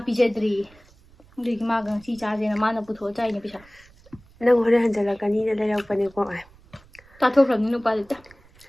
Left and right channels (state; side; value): noise; right; rumble, 27 dB below the sound